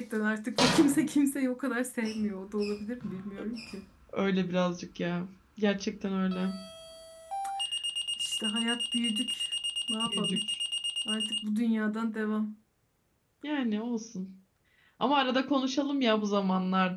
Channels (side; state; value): both; identical; correlation 1.00